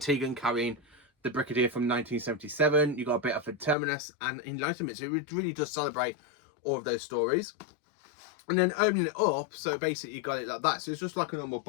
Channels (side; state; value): right; drops out; at 3.8 s